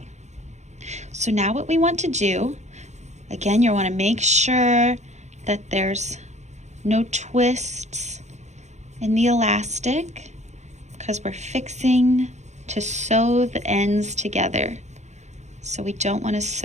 so now what we want to do, again, you want to make sure that there's no twists in the elastic because we're fixing to sew the ends together. So we don't want to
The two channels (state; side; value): late; left; 0.33 ms